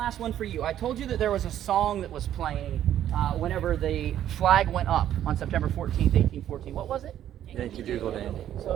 one for you. I told you that there was a song that was playing whenever the flag went up on September 14th, 1814. What was it? Yankee Doodle Dandy. So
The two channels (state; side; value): quieter; left; 11.2 dB